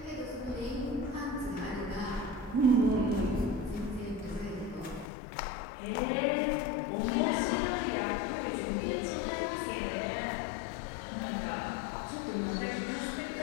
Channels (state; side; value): drops out; right; at 5.1 s